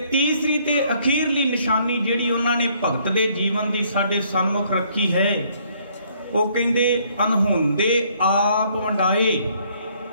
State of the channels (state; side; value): inverted; both; correlation -0.65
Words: ਤੀਸਰੀ ਤੇ ਅਖੀਰਲੀ ਨਿਸ਼ਾਨੀ ਜਿਹੜੀ ਉਹਨਾਂ ਨੇ ਭਗਤ ਦੇ ਜੀਵਨ ਦੀ ਸਾਡੇ ਸਨਮੁਖ ਰੱਖੀ ਹੈ, ਉਹ ਕਹਿੰਦੇ ਅਨਹੋਂਦੇ ਆਪ ਵੰਡਾਏ